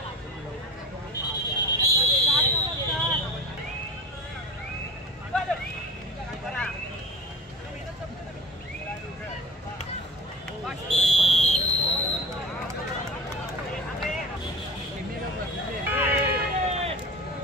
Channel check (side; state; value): both; normal; correlation 0.34